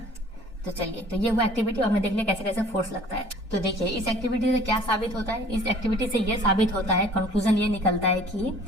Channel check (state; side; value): normal; both; correlation 0.51